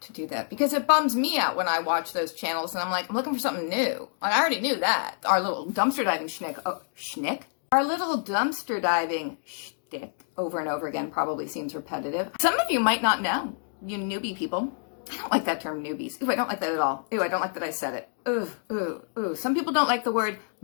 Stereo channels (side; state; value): right; silent; digital silence